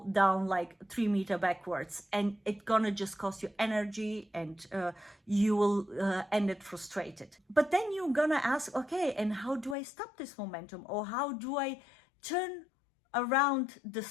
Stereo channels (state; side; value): drops out; right; at 9.8 s